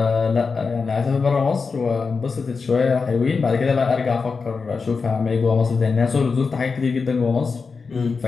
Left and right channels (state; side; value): quieter; right; 4.8 dB